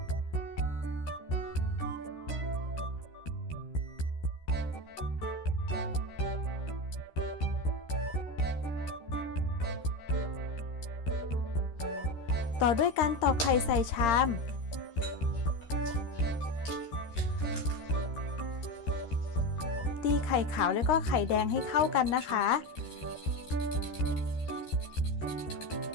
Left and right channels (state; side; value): late; right; 13 ms